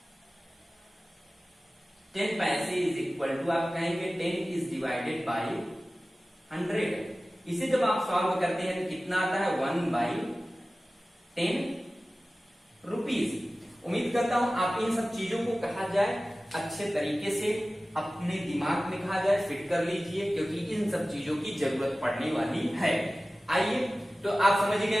10 पैसे इज इक्वल टू, आप कहेंगे 10 इज डिवाइडेड बाय 100। इसे जब आप सॉल्व करते हैं तो कितना आता है? 1/10 रुपीज। उम्मीद करता हूं आप इन सब चीजों को कहा जाए अच्छे तरीके से अपने दिमाग में कहा जाए फिट कर लीजिए क्योंकि इन सब चीजों की जरूरत पड़ने वाली है। आइए, तो आप समझ गए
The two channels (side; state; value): both; normal; correlation 0.96